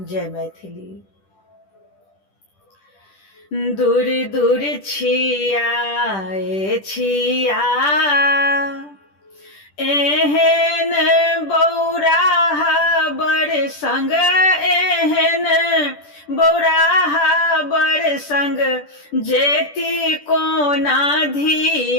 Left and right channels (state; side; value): late; right; 10 ms